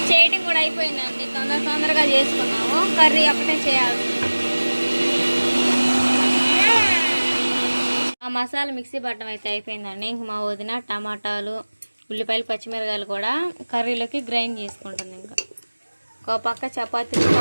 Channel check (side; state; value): both; inverted; correlation -1.00